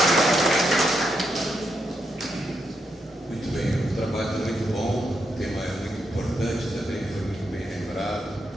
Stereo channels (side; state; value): both; normal; correlation 0.81